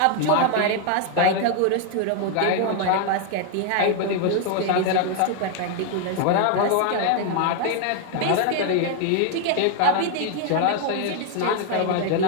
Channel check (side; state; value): both; different; correlation 0.00